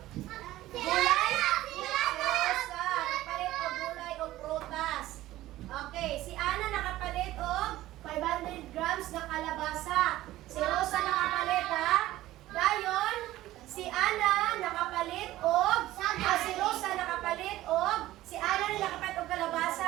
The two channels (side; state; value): left; quieter; 15.7 dB